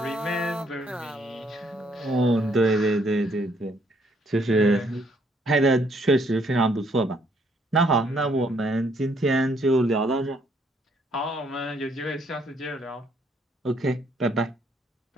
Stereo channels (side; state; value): both; normal; correlation 0.68